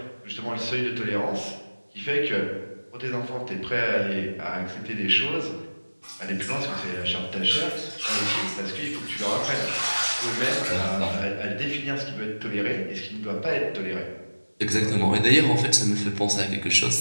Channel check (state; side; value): inverted; both; correlation -1.00